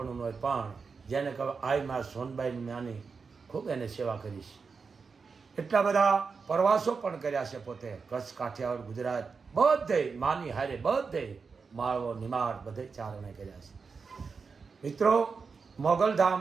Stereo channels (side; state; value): left; quieter; 5.1 dB